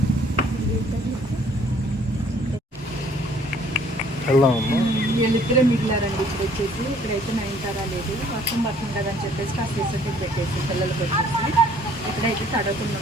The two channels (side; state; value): both; normal; correlation 0.59